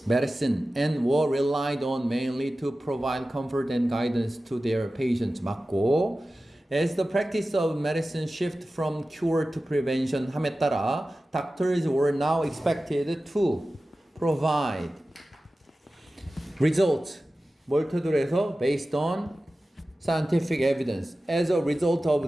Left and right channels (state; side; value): normal; both; correlation 0.95